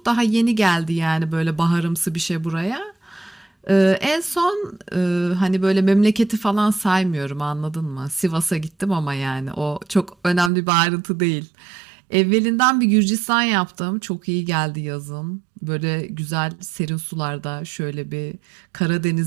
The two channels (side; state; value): left; drops out; at 10.5 s